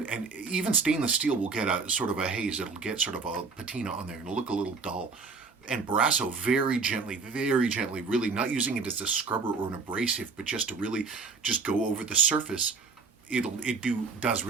and even stainless steel will get a sort of a haze. It'll get sort of a patina on there and it'll look a little dull. And Brasso very gently, really not using it as a scrubber or an abrasive, but just to really just go over the surface, does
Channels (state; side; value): quieter; left; 4.6 dB